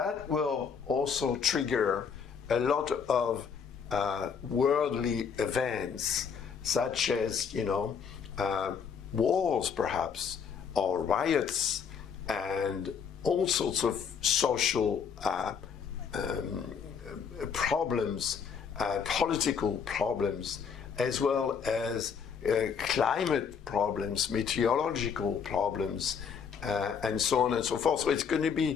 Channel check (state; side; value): quieter; right; 6.6 dB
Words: will also trigger a lot of worldly events, such as, wars perhaps, or riots, and all sorts of social problems, political problems, as well as climate problems, meteorological problems, and so on and so forth. So it's going to